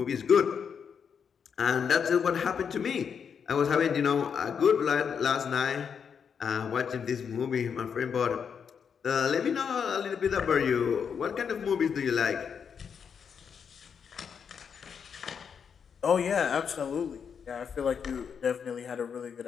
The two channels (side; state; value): right; quieter; 6.9 dB